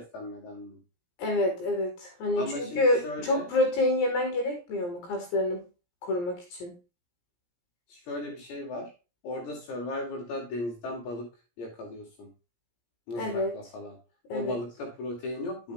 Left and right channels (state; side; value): late; right; 17 ms